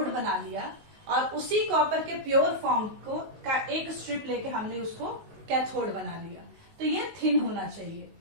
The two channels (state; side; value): late; left; 19 ms